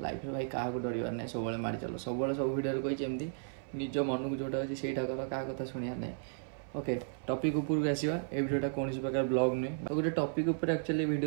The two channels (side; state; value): left; silent; 55 dB below the other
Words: लाइफ भाई क्या डर ना सब मारी चलो सब सब वीडियो कही एमती निज मन को जोटा अच्छे से कर क्या कथा शुणा ना ओके टॉपिक ऊपर को आसवा ए वीडियोटा कौन प्रकार ब्लॉग नुहे गोटे टॉपिक ऊपर एक्चुअली